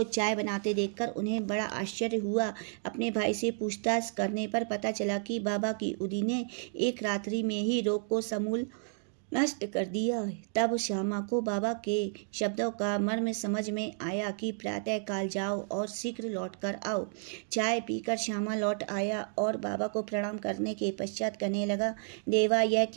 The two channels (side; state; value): left; silent; 55 dB below the other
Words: चाय बनाते देखकर उन्हें बड़ा आश्चर्य हुआ। अपने भाई से पूछताछ करने पर पता चला कि बाबा की उदी ने एक रात्रि में ही रोग को समूल नष्ट कर दिया। तब श्यामा को बाबा के शब्दों का मर्म समझ में आया कि प्रातः काल जाओ और शीघ्र लौट कर आओ। चाय पीकर श्यामा लौट आया और बाबा को प्रणाम करने के पश्चात कहने लगा, देवा यह